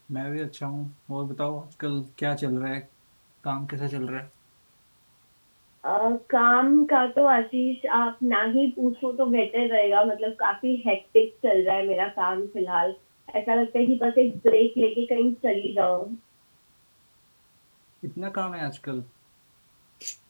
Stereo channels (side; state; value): both; inverted; correlation -1.00